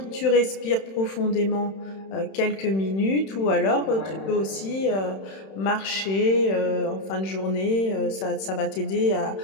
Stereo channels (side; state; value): right; late; 31 ms